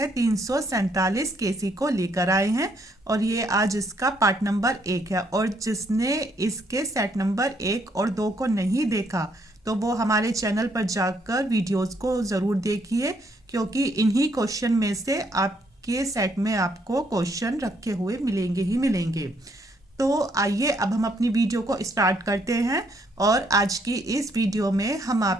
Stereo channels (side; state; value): both; normal; correlation 0.71